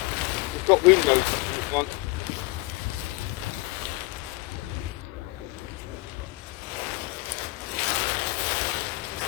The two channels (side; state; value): right; quieter; 22.6 dB